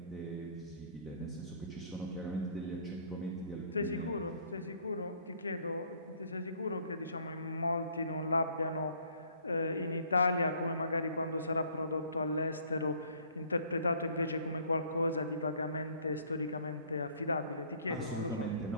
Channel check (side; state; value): both; inverted; correlation -0.58